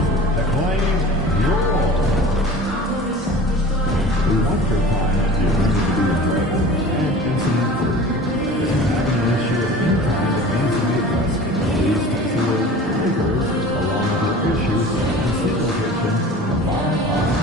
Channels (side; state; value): both; normal; correlation 0.40